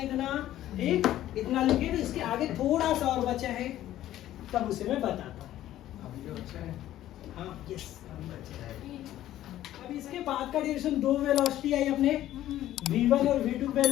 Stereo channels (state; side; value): quieter; right; 13.3 dB